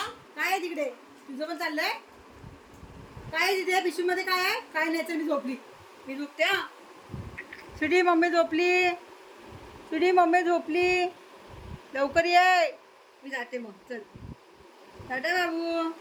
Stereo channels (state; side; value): identical; both; correlation 1.00